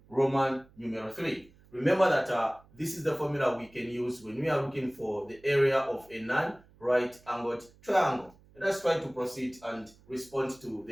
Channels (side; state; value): right; noise; hum, 27 dB below the sound